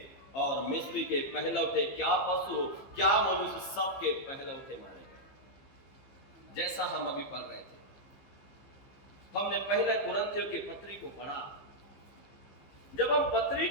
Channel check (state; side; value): late; right; 15 ms